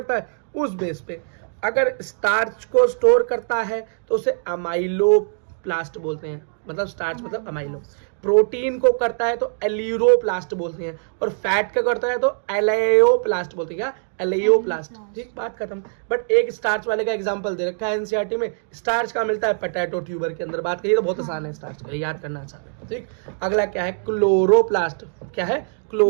है उस बेस पे। अगर स्टार्च को स्टोर करता है तो उसे अमाइलोप्लास्ट बोलते हैं, मतलब स्टार्च मतलब अमाइलो। प्रोटीन को करता है तो एलियोप्लास्ट बोलते हैं, और फैट का करता है तो एलेयोप्लास्ट बोलते हैं। क्या? एलेयोप्लास्ट, ठीक, बात खत्म। बट एक स्टार्च वाले का एग्जांपल दे रखा है एनसीईआरटी में। स्टार्च का मिलता है पोटैटो ट्यूबर के अंदर। बात करिए तो बहुत आसान है, स्टार्च का याद करना आसान है, ठीक। अगला क्या है? क्लोरोप्लास्ट। क्या है?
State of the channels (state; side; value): silent; left; digital silence